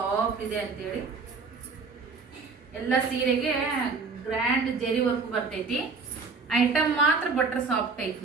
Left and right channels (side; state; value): left; quieter; 4.5 dB